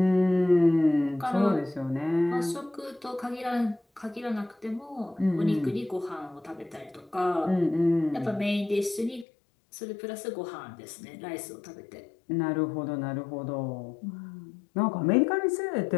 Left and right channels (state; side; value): drops out; right; at 9.2 s